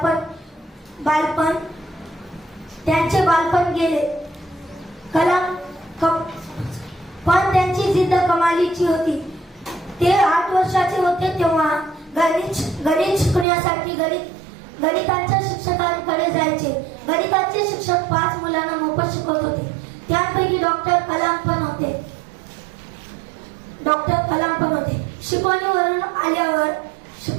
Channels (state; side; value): drops out; left; at 13.5 s